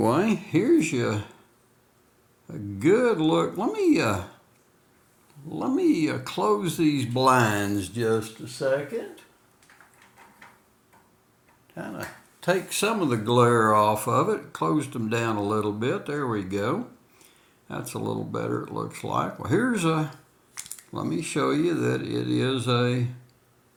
here's a good look. Let me close these blinds just a second. Kind of take some of the glare off of it. Closed them down a little bit. There we go. That's a little better, it looks like. Well, let me show you that it is a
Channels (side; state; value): both; identical; correlation 1.00